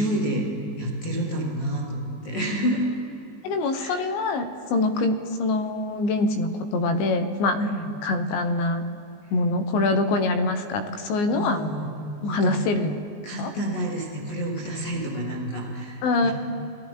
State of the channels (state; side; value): late; right; 19 ms